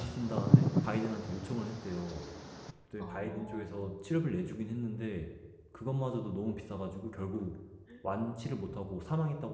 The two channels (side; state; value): both; identical; correlation 1.00